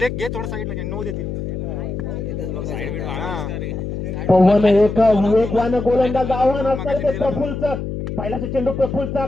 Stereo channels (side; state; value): left; noise; hum, 5 dB below the sound